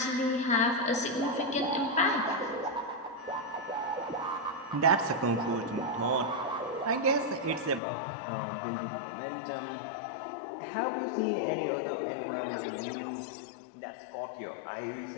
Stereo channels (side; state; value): right; drops out; at 7.8 s